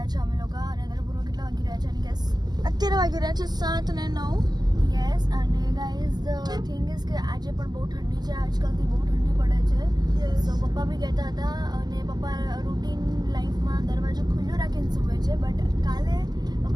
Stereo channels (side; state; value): left; late; 0.20 ms